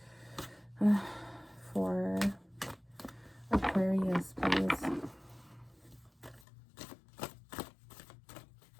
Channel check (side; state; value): right; drops out; at 6.5 s